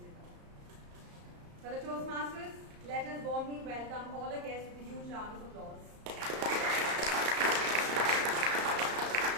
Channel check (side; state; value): left; late; 34 ms